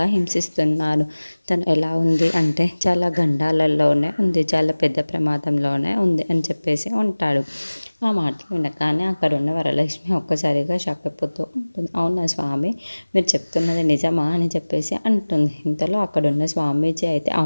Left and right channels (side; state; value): both; inverted; correlation -1.00